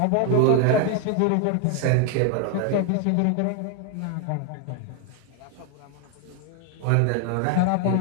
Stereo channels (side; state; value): both; different; correlation 0.01